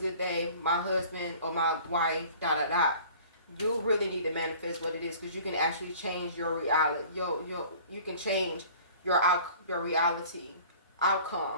day. My husband or my wife, ... You really need to manifest what it is, because you can actually change your reality. You can change your reality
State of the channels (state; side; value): inverted; both; correlation -0.47